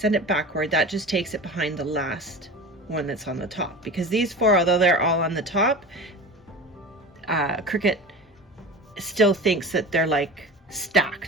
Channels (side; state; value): both; normal; correlation 0.33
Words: it backward. That just takes it behind the last one that's on the top, because these four, although they're all on the top, Cricut still thinks that they're like